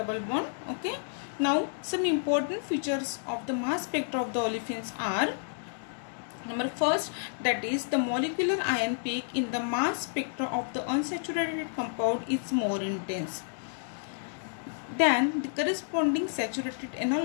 bond. Okay, now some important features of the mass spectra of the olefins are: number first, that is the molecular ion peak in the mass spectra of the unsaturated compound is more intense than the corresponding saturated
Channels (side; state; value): right; silent; digital silence